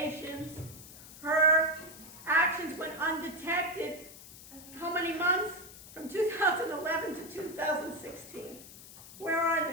Her actions went undetected. How many months? From 2011 to 2016. Where are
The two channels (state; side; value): noise; left; hiss, 17 dB below the sound